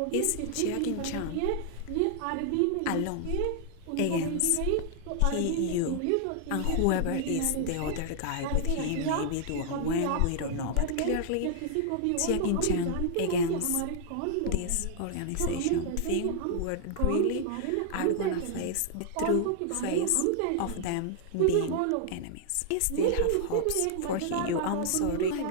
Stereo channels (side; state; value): both; different; correlation -0.01